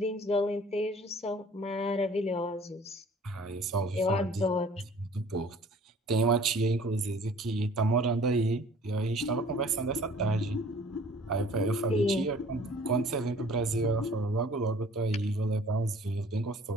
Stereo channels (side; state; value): both; normal; correlation 0.51